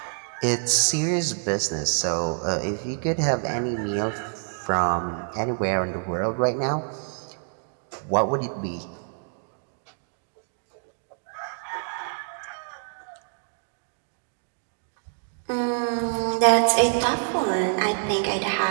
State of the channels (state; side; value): silent; left; 60 dB below the other